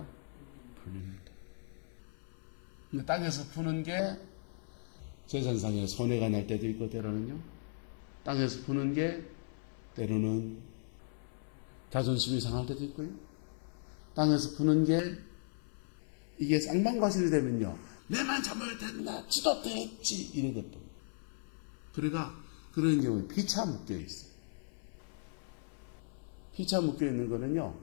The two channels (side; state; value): right; silent; 53 dB below the other